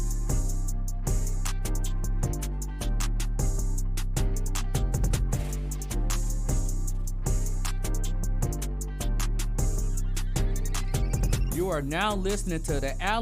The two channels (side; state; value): both; identical; correlation 1.00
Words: You are now listening to the